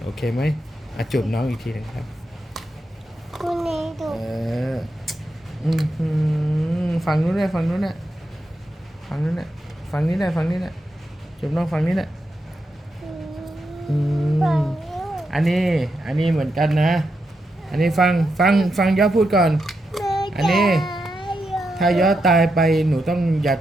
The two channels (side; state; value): both; normal; correlation 0.85